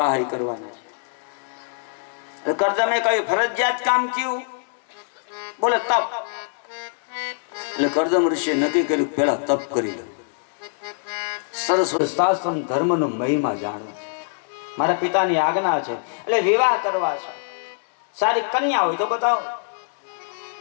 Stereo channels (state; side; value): silent; right; digital silence